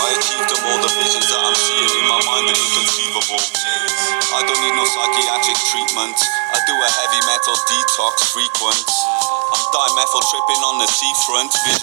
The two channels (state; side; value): silent; left; 69 dB below the other